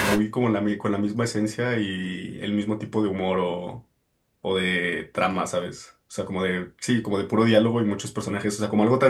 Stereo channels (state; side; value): identical; both; correlation 1.00